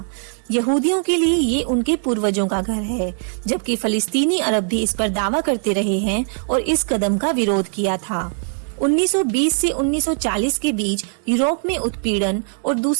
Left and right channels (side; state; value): left; silent; 61 dB below the other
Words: यहूदियों के लिए ये उनके पूर्वजों का घर है, जबकि फलस्तीनी अरब भी इस पर दावा करते रहे हैं और इस कदम का विरोध किया था। 1920 से 1940 के बीच यूरोप में उत्पीड़न और